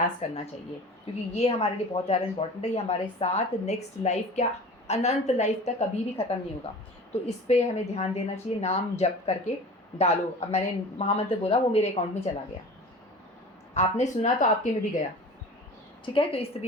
करना चाहिए, क्योंकि ये हमारे लिए बहुत ज़्यादा इंपॉर्टेंट है। ये हमारे साथ नेक्स्ट लाइफ, क्या अनंत लाइफ तक कभी भी ख़त्म नहीं होगा। तो इस पर हमें ध्यान देना चाहिए, नाम जप करके डालो। अब मैंने महामंत्र बोला, वो मेरे अकाउंट में चला गया, आपने सुना तो आपके में भी गया, ठीक है। तो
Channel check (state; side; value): normal; both; correlation 0.39